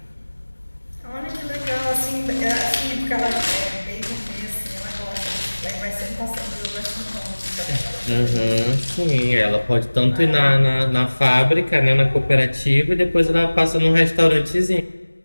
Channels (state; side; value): inverted; both; correlation -1.00